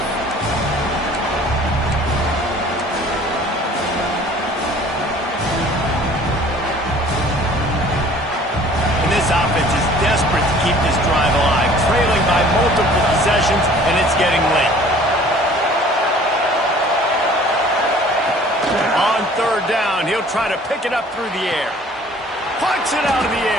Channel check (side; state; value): both; normal; correlation 0.51